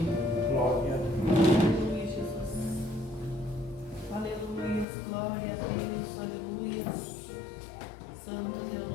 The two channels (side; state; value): right; drops out; at 4.9 s